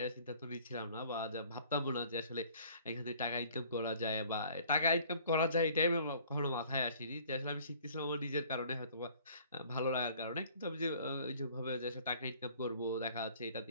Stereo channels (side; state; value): both; inverted; correlation -0.53